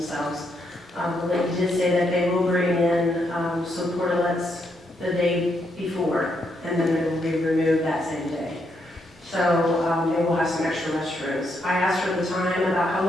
But he did say that they will bring in some portalets the day before, and then they will be removed that same day. So they will have some extra restrooms. I asked her at the time about how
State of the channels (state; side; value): normal; both; correlation 0.78